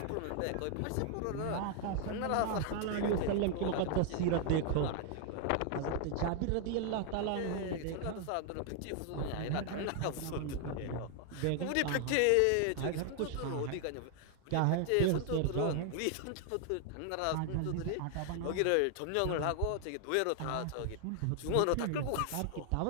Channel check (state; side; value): different; both; correlation 0.00